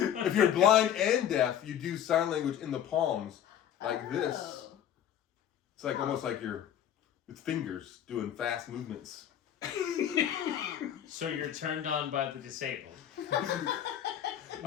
you're blind and deaf, you do sign language in the palms like this. Oh. It's like almost like you're with fingers doing fast movements. So you're turned on by the disabled.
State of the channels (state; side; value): quieter; right; 10.0 dB